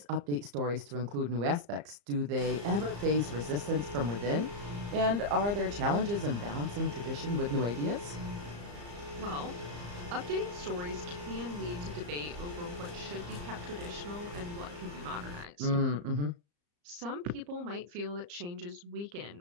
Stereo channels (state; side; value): late; left; 34 ms